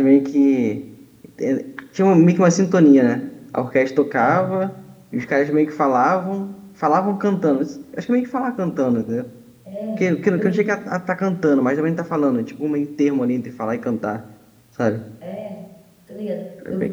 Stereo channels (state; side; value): identical; both; correlation 1.00